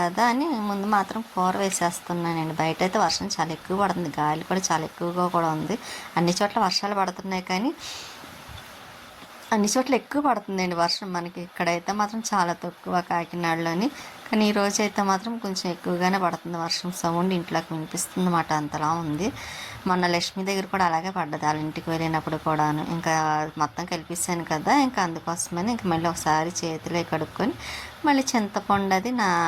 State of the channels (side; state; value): both; identical; correlation 1.00